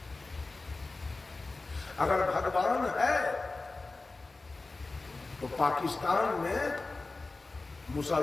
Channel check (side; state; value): right; quieter; 3.5 dB